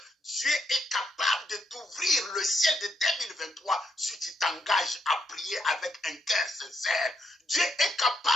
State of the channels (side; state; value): both; normal; correlation 0.78